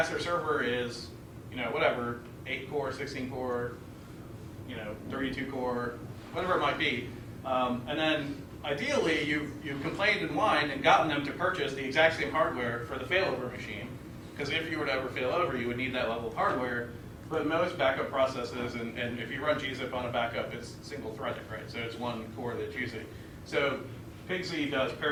server is, whatever, 8 core, 16 core, 32 core, whatever it might be. And then ideally you've complained and whined and gotten them to purchase the exact same hardware for the failover machine. Because if you were to ever fail over, you would need that level of hardware. But most backup processes, and if you run gzip on a backup, it's single-threaded, right? So it's one core that's using. So PGDay does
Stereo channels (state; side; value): identical; both; correlation 1.00